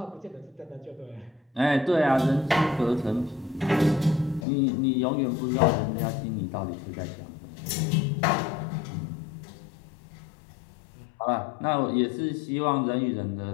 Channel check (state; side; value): drops out; right; at 4.5 s